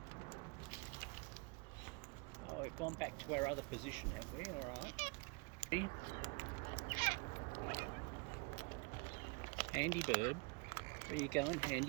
we've gone back to our other position, have we? Alright. Handy bird. Where you going,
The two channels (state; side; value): quieter; left; 29.7 dB